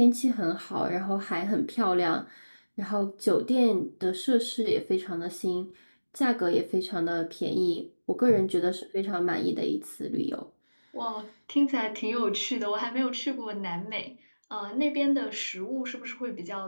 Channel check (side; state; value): both; inverted; correlation -1.00